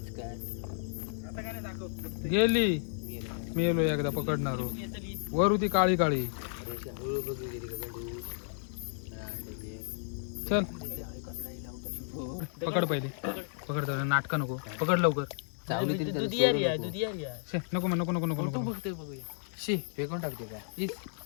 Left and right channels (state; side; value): silent; right; 55 dB below the other